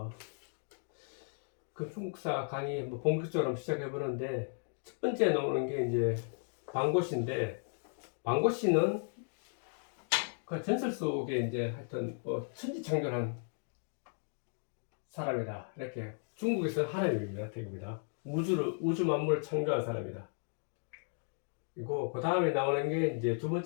중국사 강의 본격적으로 한번 시작해 보는데, 첫 번째 나오는 게 이제 방고시인데, 방고시는 그 전설 속에 이제 하여튼 천지창조한 사람이다. 이렇게 중국에서 하나님입니다. 대입니다. 우주 만물을 창조한 사람이다. 그리고 그 다음에 나오는 게 이제 두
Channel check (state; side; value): silent; right; 54 dB below the other